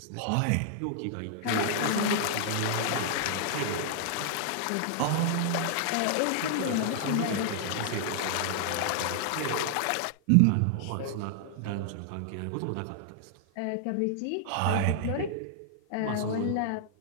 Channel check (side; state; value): both; different; correlation -0.01